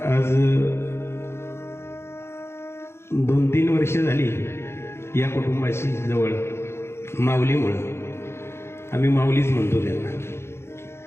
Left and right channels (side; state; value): right; late; 0.12 ms